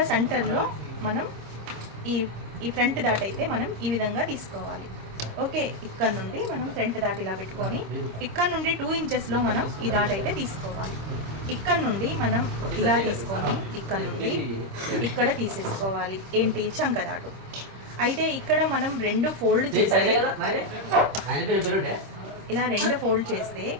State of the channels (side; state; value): left; late; 26 ms